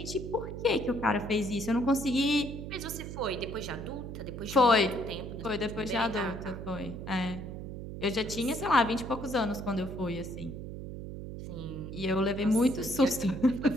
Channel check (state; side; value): noise; right; hum, 8 dB below the sound